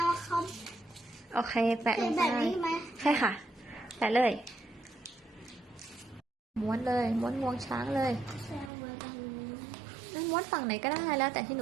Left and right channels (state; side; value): drops out; left; at 8.7 s